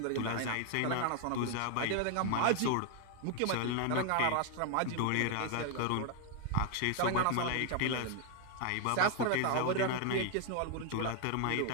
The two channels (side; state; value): both; different; correlation 0.00